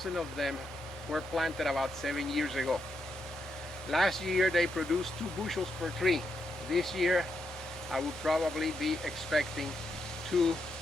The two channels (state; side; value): normal; both; correlation 0.81